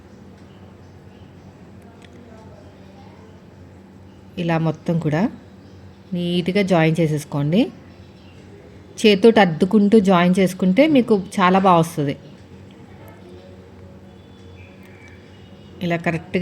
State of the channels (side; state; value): both; identical; correlation 1.00